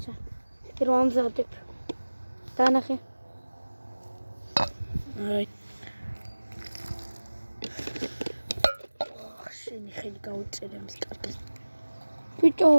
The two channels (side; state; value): both; inverted; correlation -1.00